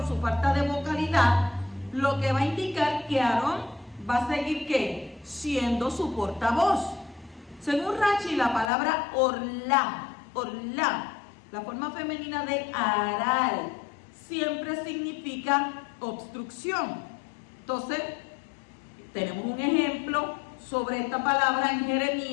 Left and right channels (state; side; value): drops out; right; at 8.7 s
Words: su falta de vocalidad, lo que va a indicar que Aarón va a seguir ¿qué? Siendo su portavoz. Según Rashi, la palabra orla, la forma femenina de aral, siempre significa obstrucción. Entonces, tenemos un ejemplo sobre esta palabra en